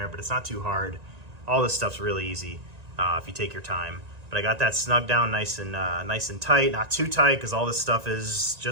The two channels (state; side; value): late; left; 1.9 ms